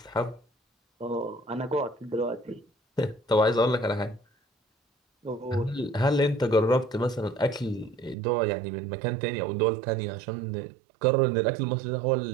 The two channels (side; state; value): left; drops out; at 8.2 s